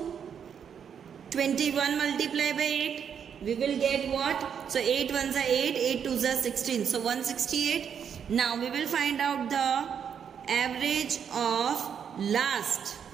21 multiplied by 8. We will get what? So 8 ones are 8, 8 twos are 16. So 168. Now we will find out the average of last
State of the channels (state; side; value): quieter; left; 7.7 dB